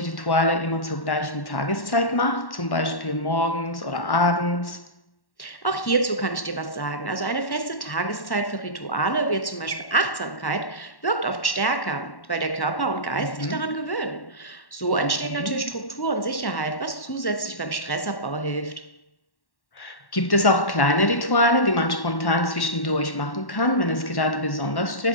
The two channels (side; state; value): right; late; 1.1 ms